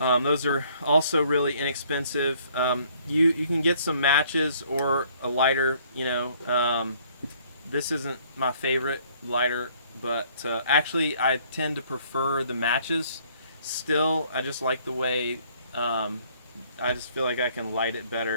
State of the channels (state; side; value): inverted; both; correlation -0.61